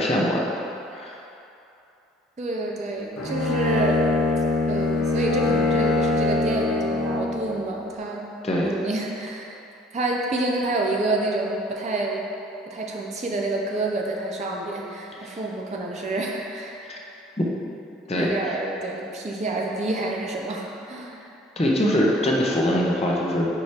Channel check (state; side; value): normal; both; correlation 0.55